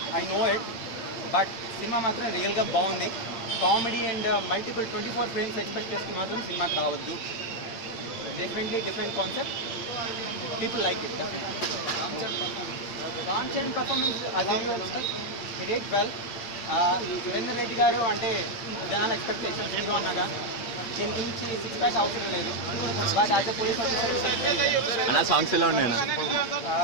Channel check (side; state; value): right; late; 8.6 ms